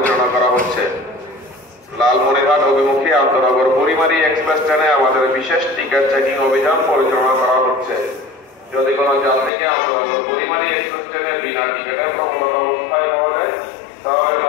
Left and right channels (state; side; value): drops out; right; at 9.5 s